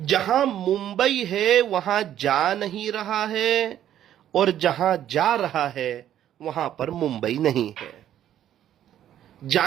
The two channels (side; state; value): left; quieter; 11.2 dB